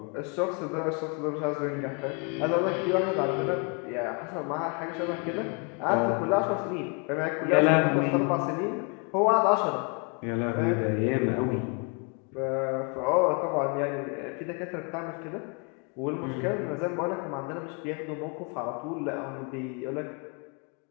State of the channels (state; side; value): quieter; right; 34.6 dB